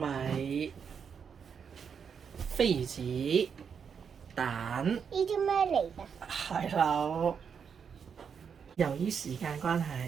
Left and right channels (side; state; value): left; quieter; 6.8 dB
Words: 飛魚子、蛋、呢啲咩嚟㗎？蟹柳。由於時間關